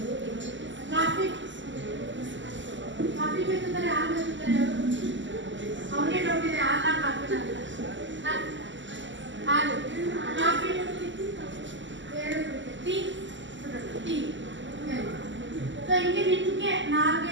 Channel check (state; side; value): late; left; 0.54 ms